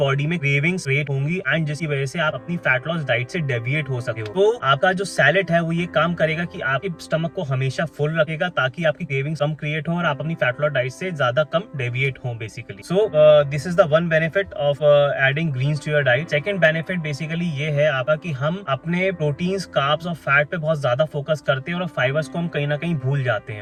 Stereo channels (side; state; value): both; identical; correlation 1.00